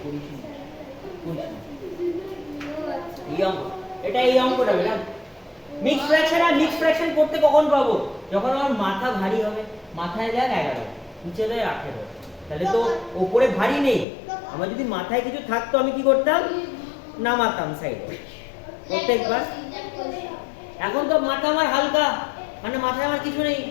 করিস না, এই অঙ্ক, এটা এই অঙ্কটা বেটা মিক্স ফ্র্যাকশন। আর মিক্স ফ্র্যাকশন করতে কখন পাবো? যখন আমার মাথা ভারী হবে, মাথায় দেখ 11, নিচে দেয় 18, তাহলে তো ওপরে ভারী নেই। আমার যদি মাথায় কিছু থাকতো আমি কি করতাম, নামাতাম সাইডে প্রত্যেকবার। এখন তো মাথা আমার হালকা, মানে মাথায় আমার কিছু নেই,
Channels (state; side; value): drops out; right; at 14.1 s